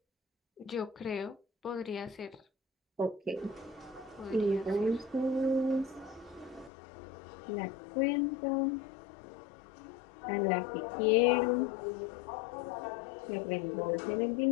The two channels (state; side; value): drops out; right; at 6.7 s